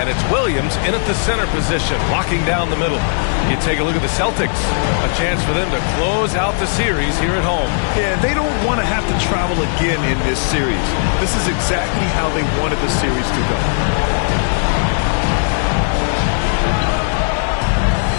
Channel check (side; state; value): right; silent; digital silence